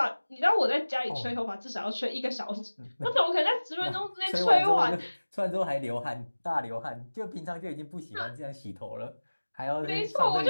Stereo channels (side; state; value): both; inverted; correlation -1.00